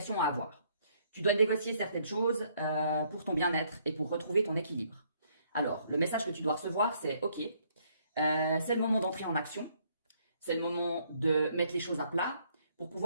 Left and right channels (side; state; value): both; inverted; correlation -0.67